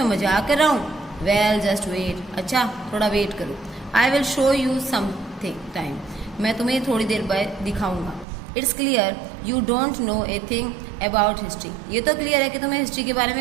मजाक कर रहा हूँ। वेल जस्ट वेट, अच्छा थोड़ा वेट करो। I will show you something time, मैं तुम्हें थोड़ी देर बाद दिखाऊंगा। It's clear you don't know a thing about history, ये तो क्लियर है कि तुम्हें हिस्ट्री के बारे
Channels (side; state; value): left; drops out; at 8.2 s